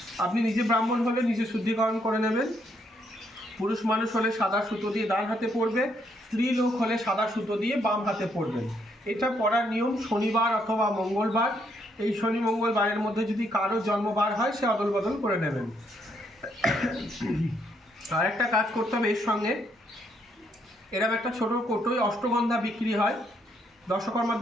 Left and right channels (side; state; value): both; normal; correlation 0.73